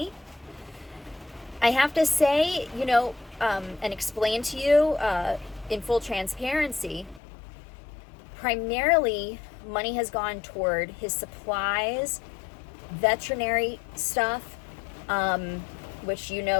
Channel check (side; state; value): right; drops out; at 7.2 s